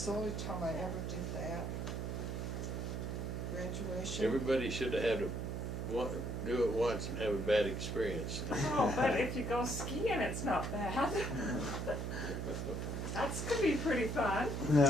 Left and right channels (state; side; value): noise; right; hum, 3 dB below the sound